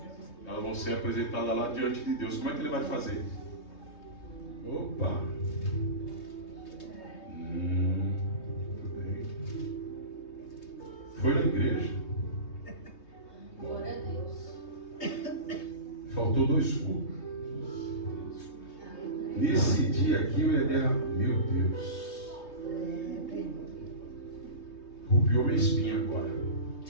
elas vão ser apresentadas lá diante de Deus. Como é que Ele vai fazer? Opa! Tudo bem. Foi na igreja. Glória a Deus. Faltou 2 cultos. Nesse dia aqui eu ia derramar. Meu Deus. Rupiou minha espinha agora.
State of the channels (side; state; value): right; late; 3.2 ms